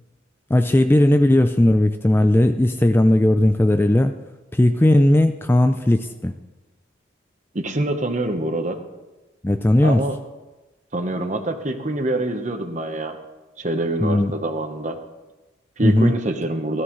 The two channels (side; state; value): both; normal; correlation 0.90